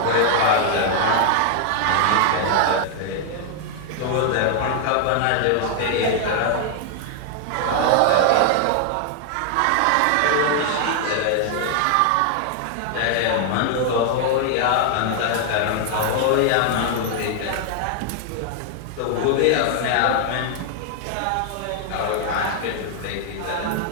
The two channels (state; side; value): different; both; correlation 0.00